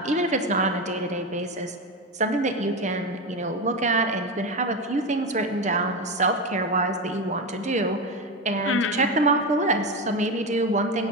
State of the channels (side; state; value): both; normal; correlation 0.17